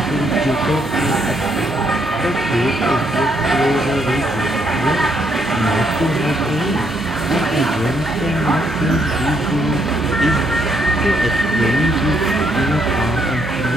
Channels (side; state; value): both; normal; correlation 0.74